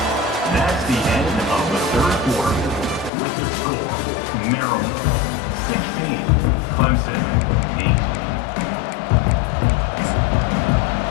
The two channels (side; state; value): right; drops out; at 3.1 s